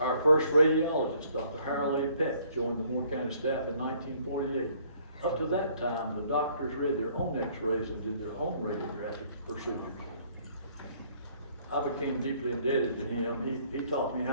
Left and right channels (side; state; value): both; inverted; correlation -0.62